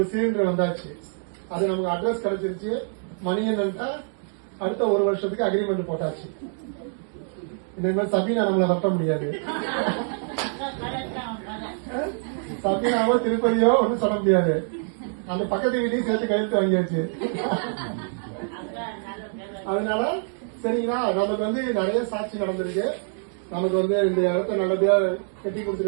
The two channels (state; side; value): silent; left; 62 dB below the other